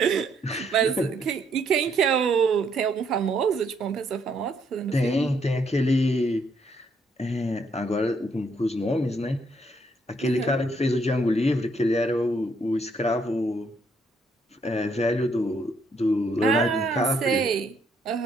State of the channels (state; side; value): normal; both; correlation 0.71